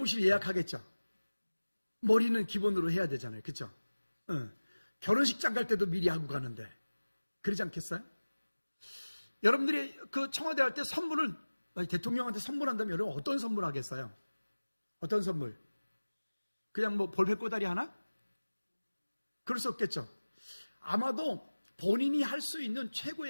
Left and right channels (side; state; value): both; inverted; correlation -1.00